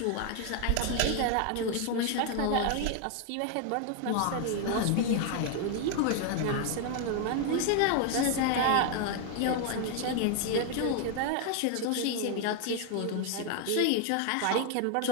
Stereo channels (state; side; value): different; both; correlation 0.00